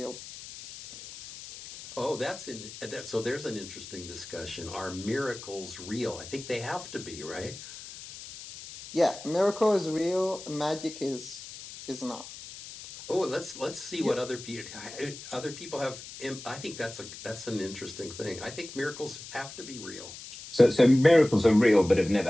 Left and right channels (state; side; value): noise; left; hiss, 13 dB below the sound